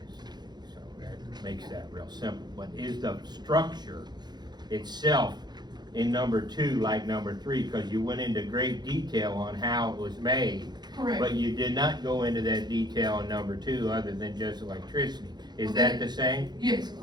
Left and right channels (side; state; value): left; late; 0.20 ms